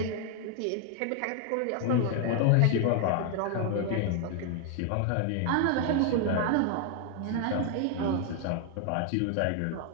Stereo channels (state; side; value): different; both; correlation 0.00